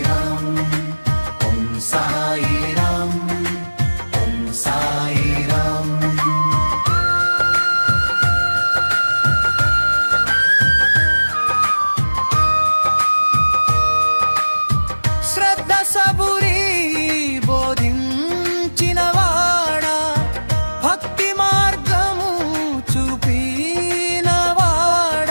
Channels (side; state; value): both; inverted; correlation -1.00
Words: ఓం సాయిరాం ఓం సాయిరాం. శ్రద్ధ సబురి బోధించిన వాడా భక్తి మార్గము చూపిన